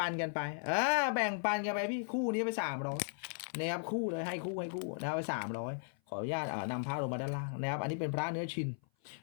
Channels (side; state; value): right; silent; 53 dB below the other